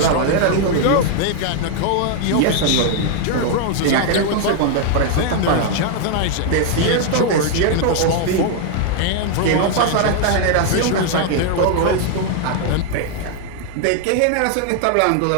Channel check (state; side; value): different; both; correlation 0.00